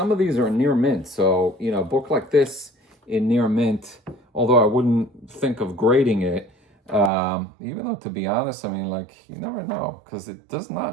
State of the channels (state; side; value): drops out; left; at 7.1 s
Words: of these are near mint. So, you know, a book like this in near mint, although I wouldn't think of grading it, even though, to be honest, I mean, like, you never know, because it does